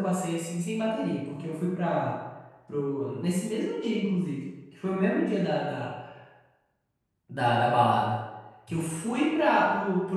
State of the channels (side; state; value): both; identical; correlation 1.00